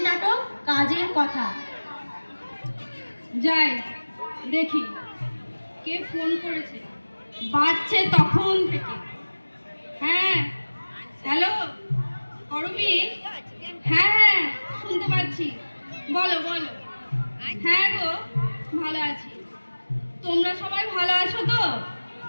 কাজের কথা। যাই দেখি কে ফোন করেছে, বাজছে তখন থেকে। হ্যাঁ, হ্যালো করবি? হ্যাঁ হ্যাঁ, শুনতে পাচ্ছি, বলো বলো। হ্যাঁ গো, ভালো আছি। তোমরা সবাই ভালো আছো তো?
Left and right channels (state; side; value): inverted; both; correlation -1.00